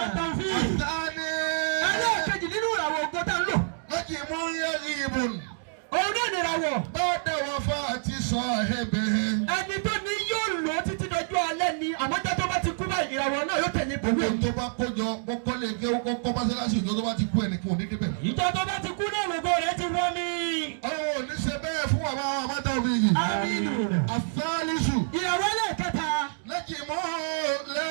àtàní. ẹlẹ́ẹ̀kejì nínú ìràwọ̀ ògo tá ń lò. lẹ́jìmú yàgìbù òun náà ní ìràwọ̀. bá dáwọ́ fún àti sọ èbèrè. ẹni tó ní yóò lò ó títí dọjọ́ alẹ́ ni àmọ́jọ́ tó bá ti kú báyìí ìràwọ̀ náà yóò tẹ̀lé pẹ̀lú gbogbo ẹ̀. tó bá kójọ kọ́kọ́ lè ké kọ́kọ́ mọ́sálásí ìjọ tó bá ti kú ẹnìkan òní débẹ̀. ìjọ tó bá ti kú náà lògo rẹ ti wọ́n mi. àwọn ò ní ṣe bẹ́ẹ̀ fún bàbá àwọn ọmọdé òbí yìí. Aminu. àfẹ́lísù. ìràwọ̀ ẹlẹ́ẹ̀kẹta. lẹ́jìmú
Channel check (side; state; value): left; silent; digital silence